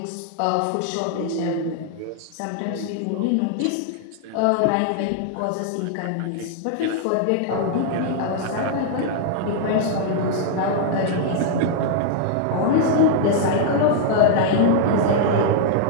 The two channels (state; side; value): different; both; correlation -0.01